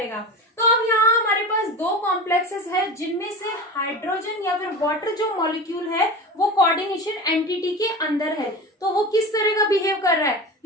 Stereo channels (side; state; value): both; normal; correlation 0.29